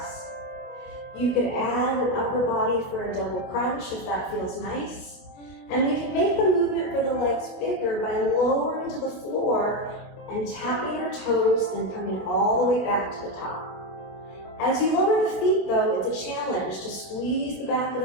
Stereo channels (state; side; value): late; right; 25 ms